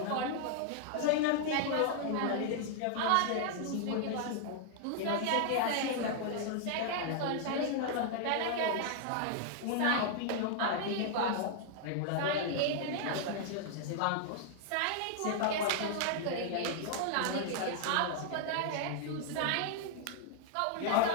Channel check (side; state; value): both; different; correlation -0.01